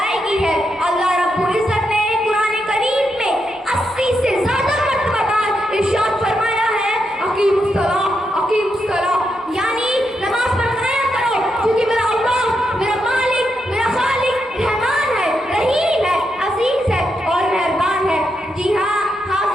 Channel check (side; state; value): both; normal; correlation 0.83